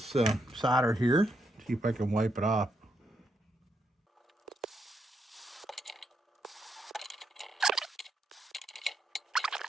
solder here. See if I can wipe it off.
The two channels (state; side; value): normal; both; correlation 0.79